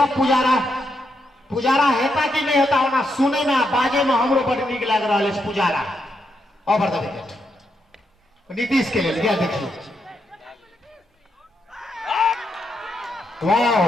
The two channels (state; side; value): normal; both; correlation 0.81